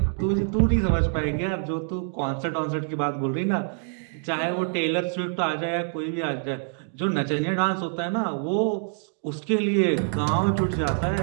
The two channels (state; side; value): silent; left; 61 dB below the other